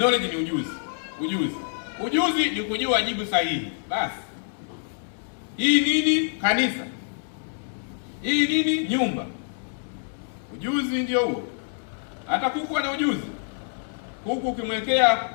ni ujuzi ni kujua jibu sahihi. Basi hii nini? Kanisa. Hii nini? Nyumba. Ujuzi ndio huo. Hata kuku ana ujuzi. Kuku ukimwekea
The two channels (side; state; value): right; silent; digital silence